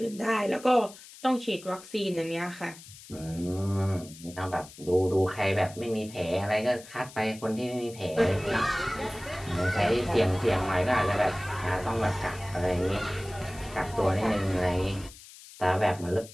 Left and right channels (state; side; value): noise; left; hiss, 18 dB below the sound